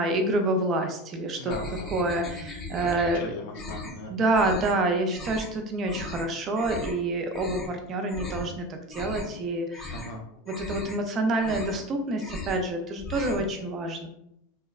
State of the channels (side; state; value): both; normal; correlation 0.31